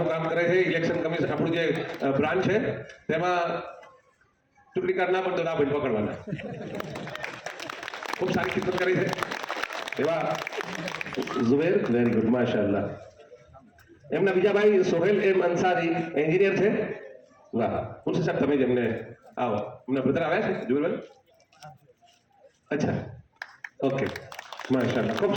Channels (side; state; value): both; identical; correlation 1.00